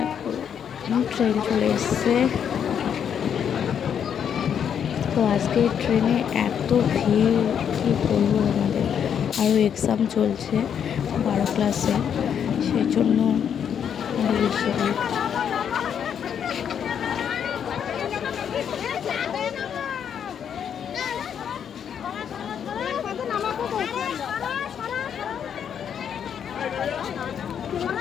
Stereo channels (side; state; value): right; quieter; 8.3 dB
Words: ট্রেন চলে এসছে। তো আজকে ট্রেনে এত ভিড়, কি বলবো তোমাদের। আরও এক্সাম চলছে 12 ক্লাসে, সেই জন্য আরও বেশি ভিড়।